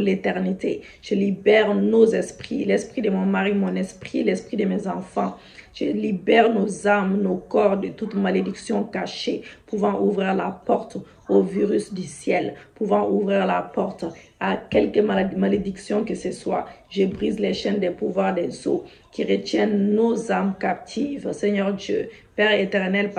Je libère nos esprits, l'esprit de mon mari, mon esprit, l'esprit de mes enfants. Je libère nos âmes, nos corps de toute malédiction cachée, pouvant ouvrir la porte au virus du ciel, pouvant ouvrir la porte à quelque malédiction que ce soit. Je brise les chaînes des pouvoirs des eaux qui retiennent nos âmes captives. Seigneur Dieu, Père éternel,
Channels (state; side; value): identical; both; correlation 1.00